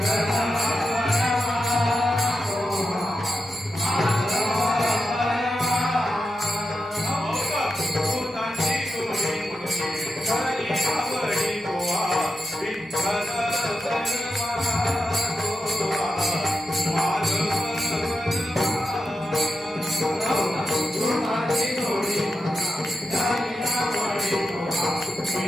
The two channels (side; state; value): both; normal; correlation 0.89